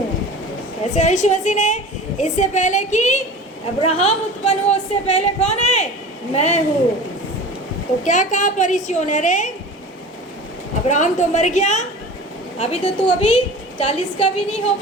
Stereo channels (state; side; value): normal; both; correlation 0.37